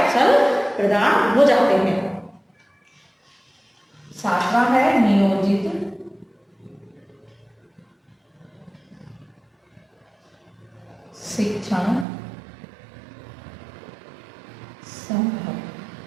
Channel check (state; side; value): drops out; left; at 12.1 s